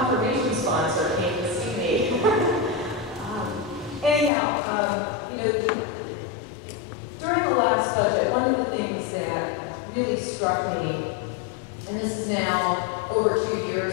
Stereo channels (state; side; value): drops out; right; at 4.3 s